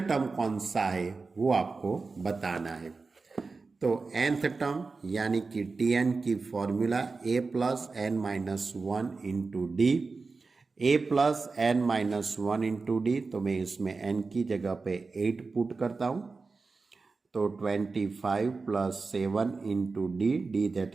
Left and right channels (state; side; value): quieter; left; 4.1 dB